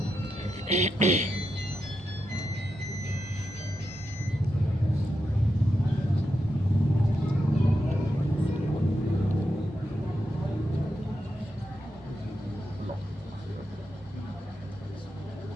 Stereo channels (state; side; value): normal; both; correlation 0.86